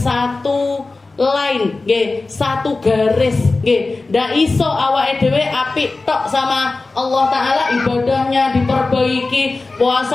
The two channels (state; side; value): quieter; right; 3.5 dB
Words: line, satu garis. Ndak iso awake dhewe apik tok sama Allah Ta'ala, ibadahnya diperbaiki,